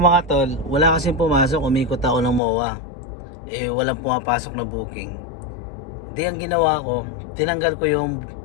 mga tol, wala kasing pumasok, umikot ako ng MOA. Walang pumapasok na booking. Di ang ginawa ko, tinanggal ko yung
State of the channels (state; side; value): drops out; right; at 2.4 s